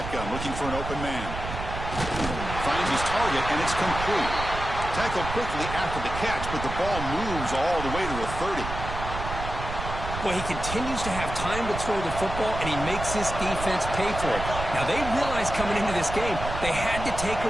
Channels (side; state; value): right; noise; rumble, 7 dB below the sound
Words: looking for an open man. Finds his target, and it's complete. Tackled quickly after the catch, but the ball moves all the way to the 30. Well, he continues to have time to throw the football, and he makes his defense pay for it. Now, they realized coming into this game, they had to take